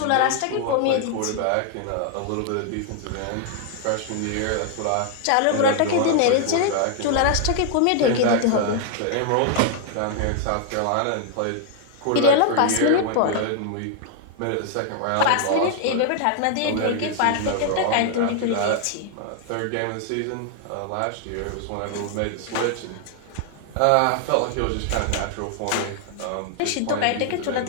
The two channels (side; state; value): both; different; correlation 0.00